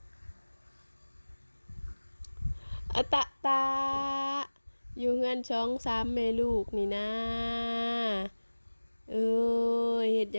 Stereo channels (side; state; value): both; inverted; correlation -1.00